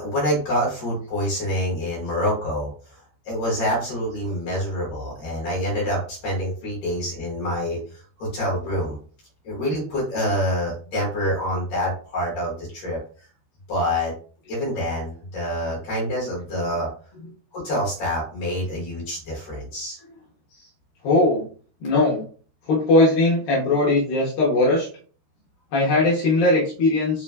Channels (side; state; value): right; late; 13 ms